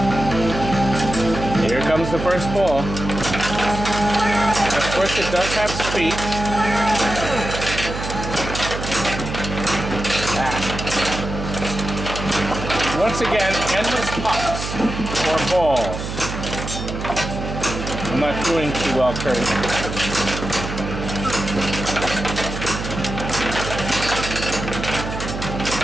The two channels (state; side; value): noise; right; hum, 6 dB below the sound